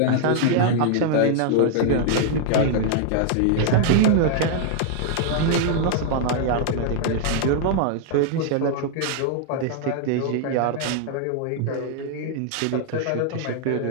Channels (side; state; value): both; different; correlation 0.00